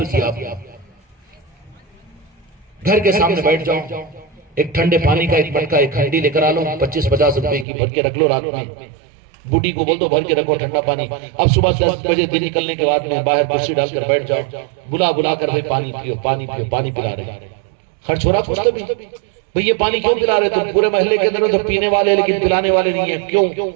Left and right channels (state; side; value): drops out; left; at 7.7 s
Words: دیا. گھر کے سامنے بیٹھ جاؤ, ایک ٹھنڈے پانی کا ایک مٹکا ایک ہنڈی لے کر آ لو, 25-50 روپے کی بھر کے رکھ لو. رات میں بوڑھی کو بول دو بھر کے رکھو ٹھنڈا پانی. اب صبح 10 بجے دن نکلنے کے بعد میں باہر کرسی ڈال کر بیٹھ جاؤ, بلا بلا کر بھائی پانی پیو پانی پیو, پانی پلا رہے. خرچ ہو رہا کچھ تو بھی, بھئی یہ پانی کیوں پلا رہے؟ تم پورے محلے کے اندر تو پینے والے لیکن پلانے والے نہیں ہیں, کیوں؟